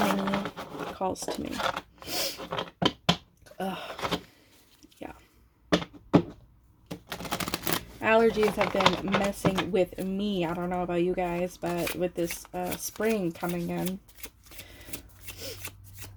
calls to me. Yeah. Allergies have been messing with me. I don't know about you guys, but with this spring coming in,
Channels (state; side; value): identical; both; correlation 1.00